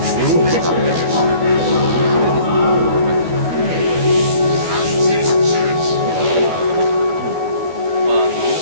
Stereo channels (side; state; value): left; late; 12 ms